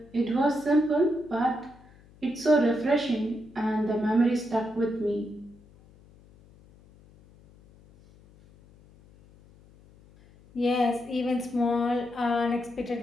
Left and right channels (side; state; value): left; noise; hum, 26 dB below the sound